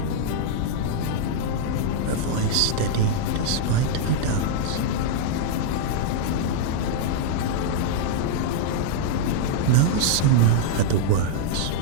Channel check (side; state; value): both; different; correlation -0.01